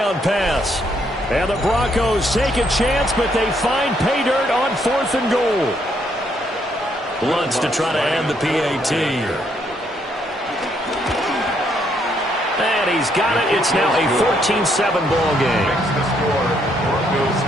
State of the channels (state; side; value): normal; both; correlation 0.72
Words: pass. And the Broncos take a chance, but they find pay dirt on 4th and goal. Lutz to try to end the PAT. And he's got it. It's now a 14-7 ball game. Next to score, Broncos